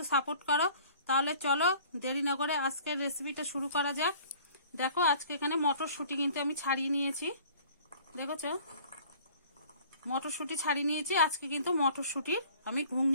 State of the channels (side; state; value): both; inverted; correlation -0.50